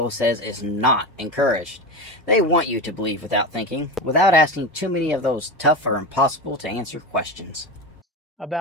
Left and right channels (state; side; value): normal; both; correlation 0.22